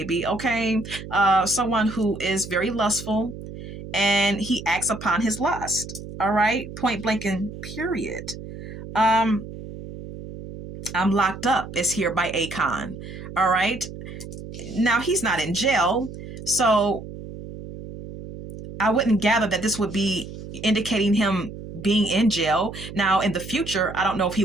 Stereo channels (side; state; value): right; noise; hum, 12 dB below the sound